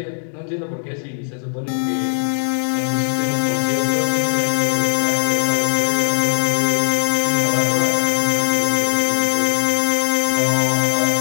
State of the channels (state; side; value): silent; right; digital silence